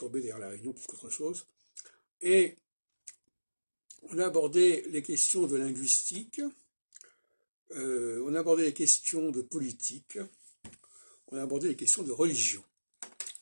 d'ailleurs la réunion plus qu'autre chose. Et on a abordé les questions de linguistique, on a abordé les questions de politique, on a abordé les questions de religion,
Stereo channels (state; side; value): inverted; both; correlation -1.00